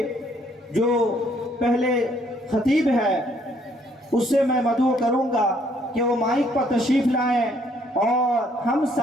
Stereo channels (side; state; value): both; normal; correlation 0.66